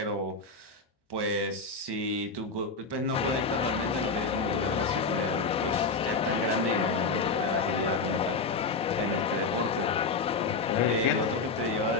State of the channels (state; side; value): quieter; right; 4.2 dB